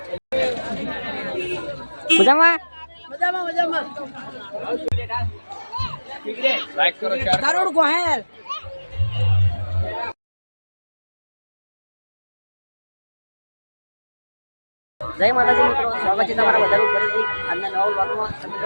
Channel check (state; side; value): inverted; both; correlation -1.00